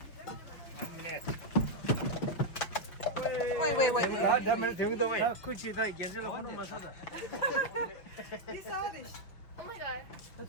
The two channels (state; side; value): late; right; 5.7 ms